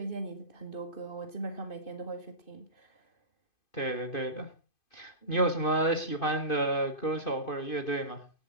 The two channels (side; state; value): right; late; 2.5 ms